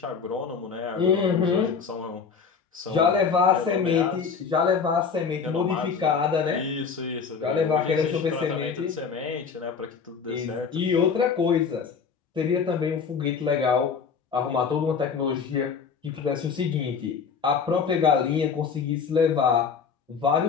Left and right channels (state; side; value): quieter; right; 5.9 dB